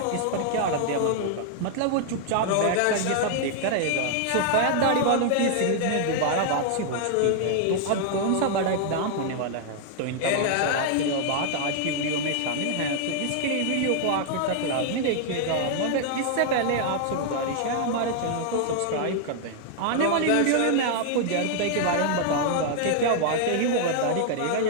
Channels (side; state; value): both; different; correlation -0.01